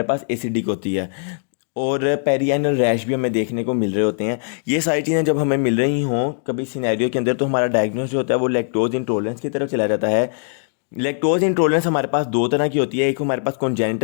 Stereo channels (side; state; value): right; silent; digital silence